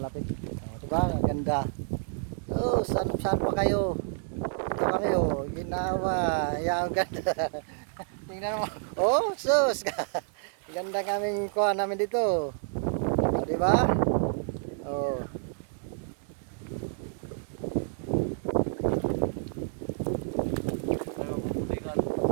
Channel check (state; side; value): silent; left; digital silence